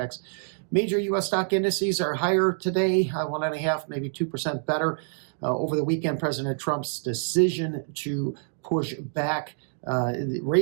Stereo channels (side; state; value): left; silent; digital silence